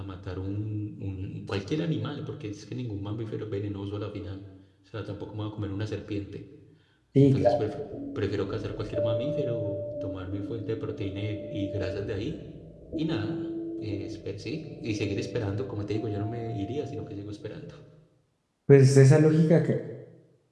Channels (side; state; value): both; identical; correlation 1.00